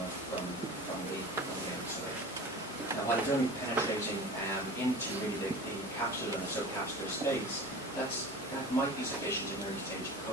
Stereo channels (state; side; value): normal; both; correlation 0.36